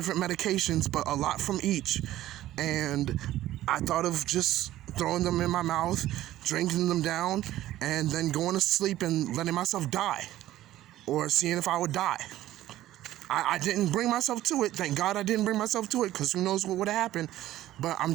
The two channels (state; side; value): quieter; left; 14.3 dB